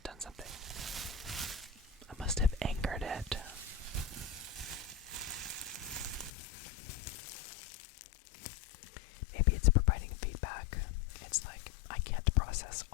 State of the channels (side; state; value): right; drops out; at 6.3 s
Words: done something. I must have anchored it. Maybe it's providing feedback. It's like I can't process